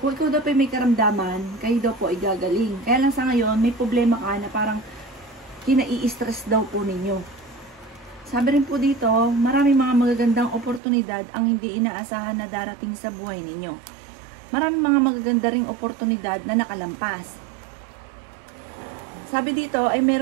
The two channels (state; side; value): drops out; left; at 10.8 s